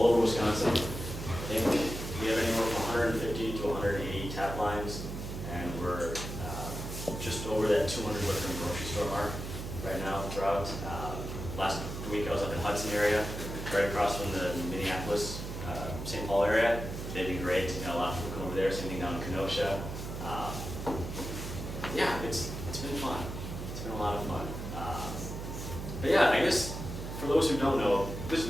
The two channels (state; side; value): noise; right; hum, 7 dB below the sound